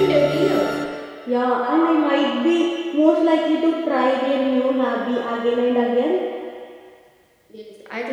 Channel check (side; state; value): both; identical; correlation 1.00